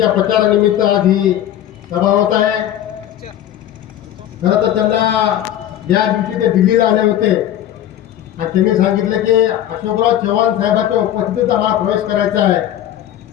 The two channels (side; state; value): right; quieter; 11.7 dB